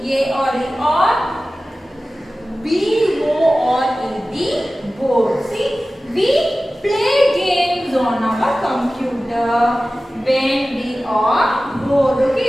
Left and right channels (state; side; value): normal; both; correlation 0.96